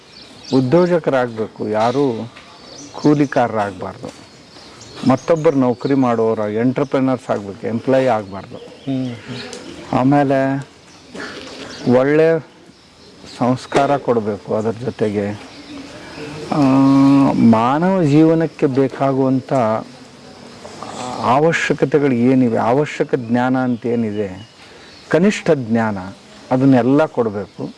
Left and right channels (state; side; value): identical; both; correlation 1.00